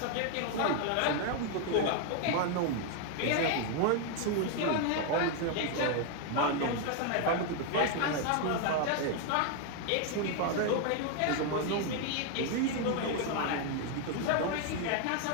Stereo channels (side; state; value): both; different; correlation 0.01